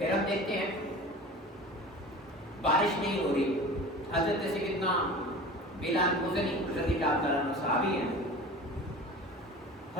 ہم دیکھتے ہیں بارش نہیں ہو رہی، حضرت سیدنا بلال مزنی رضی اللہ عنہ صحابی ہیں،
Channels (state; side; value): normal; both; correlation 0.37